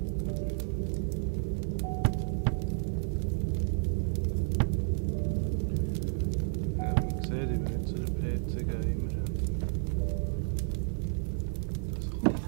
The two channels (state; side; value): silent; left; 57 dB below the other